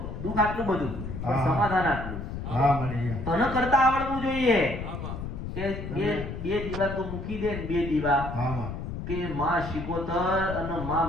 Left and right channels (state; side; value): noise; left; rumble, 7 dB below the sound